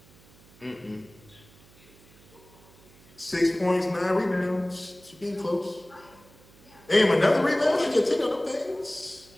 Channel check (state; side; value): noise; right; hum, 26 dB below the sound